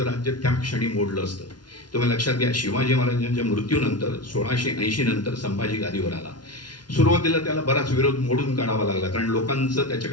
राज्य त्या क्षणी मोडलं असतं. तुम्ही लक्षात घ्या, शिवाजी महाराजांच्या मृत्यूनंतर 1680 नंतर संभाजी गादीवर आला. सुरुवातीला त्याला बराच विरोध मोडून काढावा लागला, कारण लोकांचं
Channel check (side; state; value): right; late; 0.70 ms